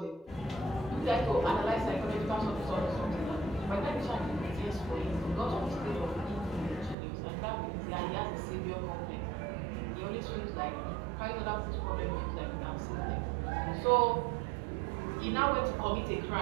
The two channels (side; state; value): left; drops out; at 7.0 s